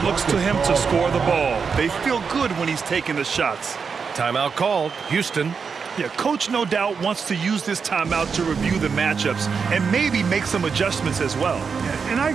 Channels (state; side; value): quieter; left; 5.7 dB